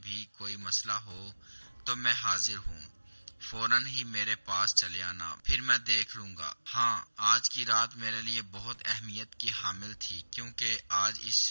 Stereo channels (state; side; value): inverted; both; correlation -1.00